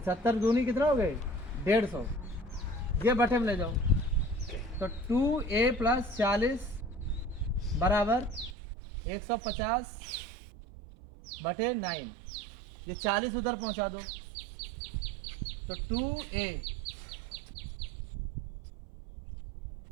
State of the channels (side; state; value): left; drops out; at 8.6 s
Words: दूनी कितना हो गए 150। ये बटे में ले जाओ तो 2a प्लस 40 बराबर 150 बटे 9। ये 40 उधर पहुंचा दो तो 2a